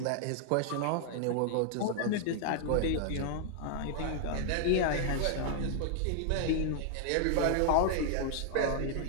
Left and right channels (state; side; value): different; both; correlation 0.00